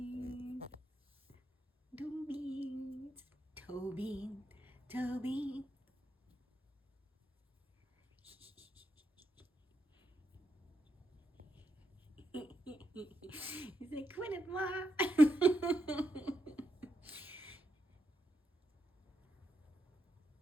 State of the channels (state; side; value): normal; both; correlation 0.83